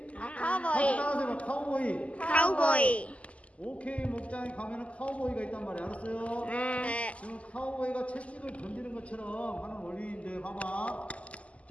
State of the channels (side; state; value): right; late; 0.064 ms